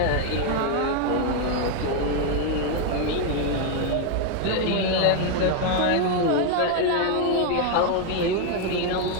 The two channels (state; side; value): different; both; correlation 0.01